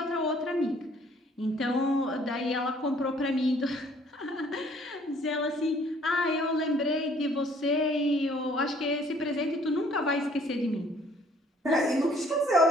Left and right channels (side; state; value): both; normal; correlation 0.59